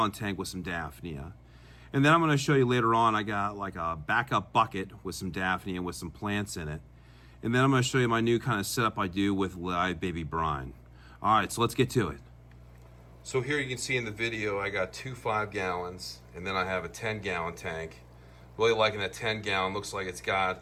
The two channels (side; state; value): both; identical; correlation 1.00